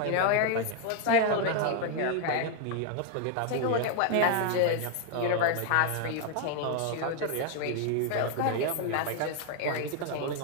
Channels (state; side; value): different; both; correlation 0.00